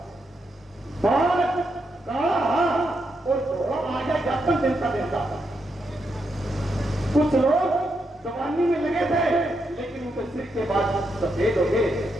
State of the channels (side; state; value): both; normal; correlation 0.82